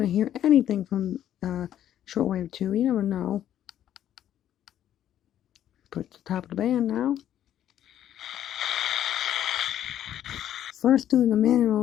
to hear anything from shortwave 2. You never know. Put the top of the band now. First do the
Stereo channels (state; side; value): quieter; right; 11.1 dB